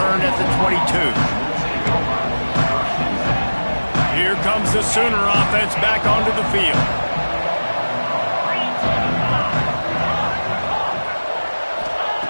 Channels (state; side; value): inverted; both; correlation -1.00